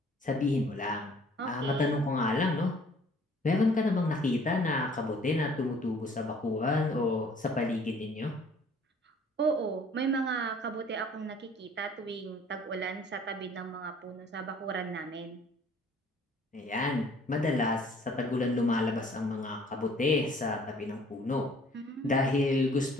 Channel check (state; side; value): normal; both; correlation 0.55